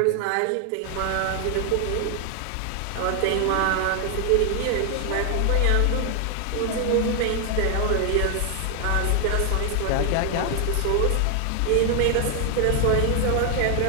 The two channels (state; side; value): different; both; correlation 0.00